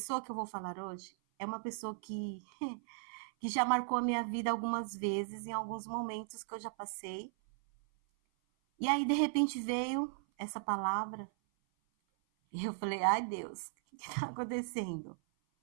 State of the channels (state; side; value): silent; left; 53 dB below the other